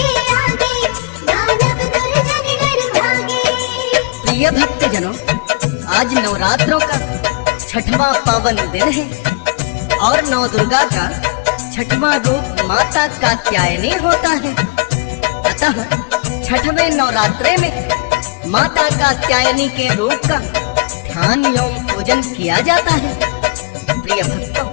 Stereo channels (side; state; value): right; quieter; 26.7 dB